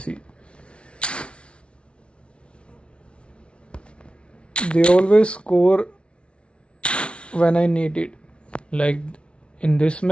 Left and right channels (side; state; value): right; late; 0.059 ms